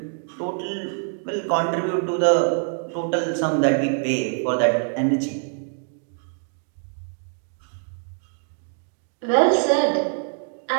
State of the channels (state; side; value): silent; left; 60 dB below the other